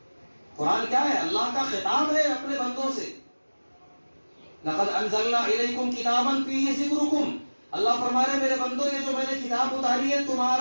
قرآن کیا ہے؟ اللہ کا خطاب ہے اپنے بندوں سے۔ لقد انزلنا الیکم کتابا فیہ ذکرکم، اللہ فرما رہے میرے بندوں یہ جو میں نے کتاب اتاری ہے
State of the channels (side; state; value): both; inverted; correlation -1.00